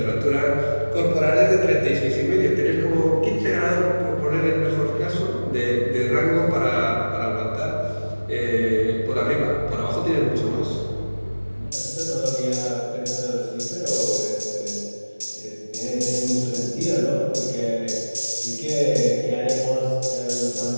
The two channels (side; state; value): both; inverted; correlation -1.00